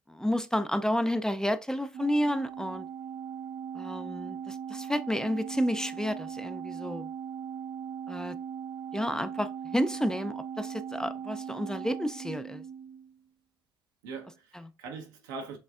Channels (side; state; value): both; normal; correlation 0.87